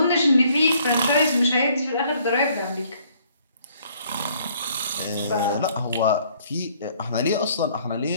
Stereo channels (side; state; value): both; inverted; correlation -0.62